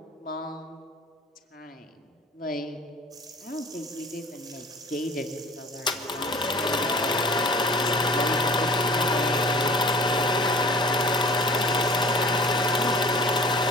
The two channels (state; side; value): normal; both; correlation 0.45